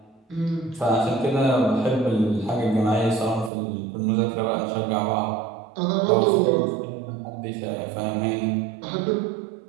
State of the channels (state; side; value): drops out; left; at 3.5 s